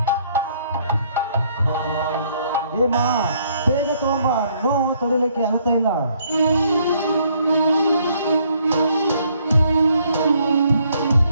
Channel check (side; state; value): both; inverted; correlation -0.67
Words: ಹೇಮ, ಬೇಗ ತಗೊಂಬ, ನೋವು ತಡೆಯಲಿಕ್ಕೆ ಆಗ್ತಾ ಇಲ್ಲ.